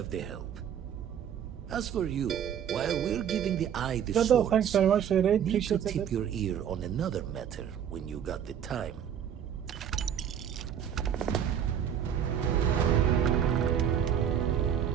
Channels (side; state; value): left; quieter; 8.9 dB